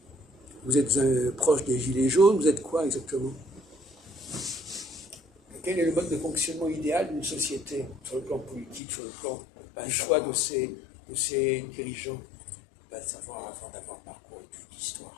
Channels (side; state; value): right; drops out; at 8.8 s